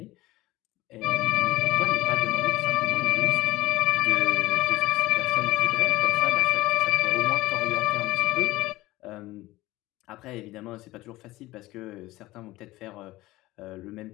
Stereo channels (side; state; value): right; quieter; 18.3 dB